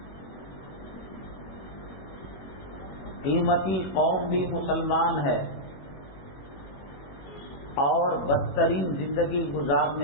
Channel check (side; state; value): right; late; 21 ms